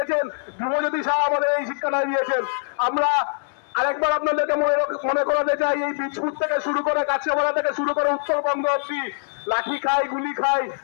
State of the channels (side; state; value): right; silent; 63 dB below the other